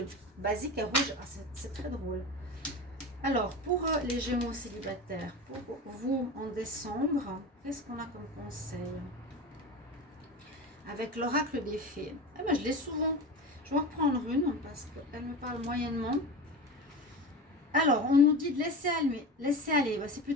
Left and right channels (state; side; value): normal; both; correlation 0.28